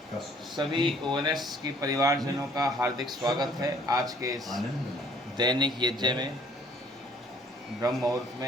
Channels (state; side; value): normal; both; correlation 0.58